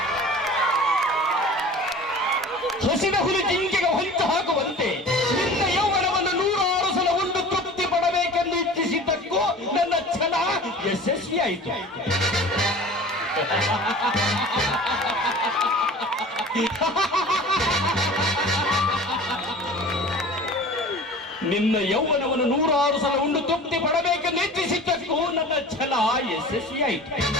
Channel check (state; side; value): normal; both; correlation 0.41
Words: ಹಸಿದ ಹುಲಿ ಜಿಂಕೆಗೆ ಹೊಂಚು ಹಾಕುವಂತೆ ನಿನ್ನ ಯೌವನವನ್ನು 106 ಸಲ ಉಂಡು ತೃಪ್ತಿ ಪಡಬೇಕೆಂದು ಇಚ್ಛಿಸಿದ್ದಕ್ಕೂ ನನ್ನ ಛಲ ಯಶಸ್ವಿಯಾಯಿತು. ನಿನ್ನ ಯೌವನವನ್ನು 106 ಸಲ ಉಂಡು ತೃಪ್ತಿ ಪಡಬೇಕೆಂದು ಇಚ್ಛಿಸಿದ್ದಕ್ಕೂ ನನ್ನ ಛಲ ಯಶಸ್ವಿಯಾಯಿತು.